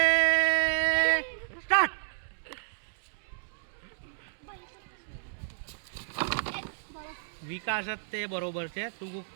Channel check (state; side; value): silent; left; digital silence